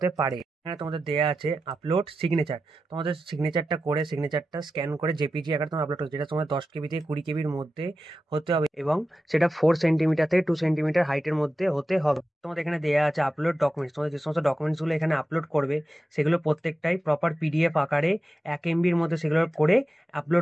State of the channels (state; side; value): normal; both; correlation 0.92